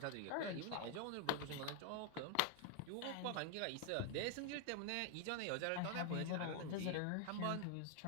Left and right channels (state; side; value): different; both; correlation 0.00